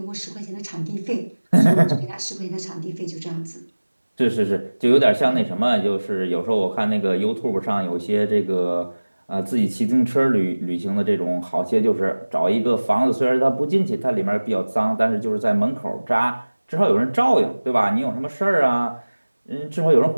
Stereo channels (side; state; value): both; inverted; correlation -1.00